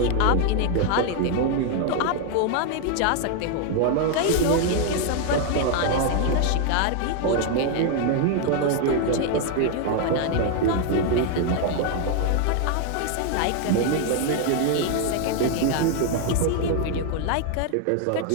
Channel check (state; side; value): different; both; correlation 0.00